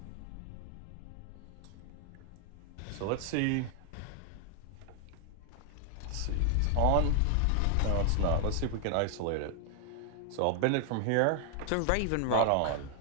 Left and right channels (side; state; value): both; different; correlation 0.00